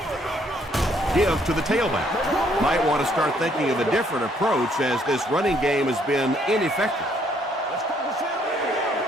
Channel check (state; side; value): normal; both; correlation 0.67